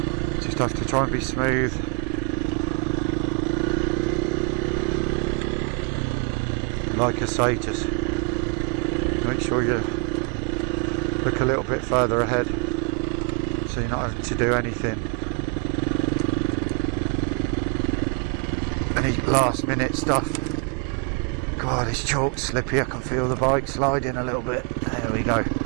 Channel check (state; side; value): quieter; left; 30.8 dB